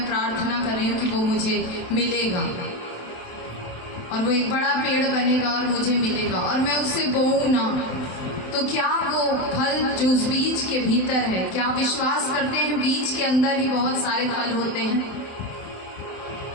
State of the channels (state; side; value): late; right; 27 ms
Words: प्रार्थना कर रही हूँ कि वो मुझे मिलेगा और वो एक बड़ा पेड़ बनेगा और मुझे मिलेगा, और मैं उसे बोऊं ना, तो क्या वो फल जो उस बीज के भीतर है, क्या विश्वास करते हैं बीज के अंदर ही बहुत सारे फल होते हैं?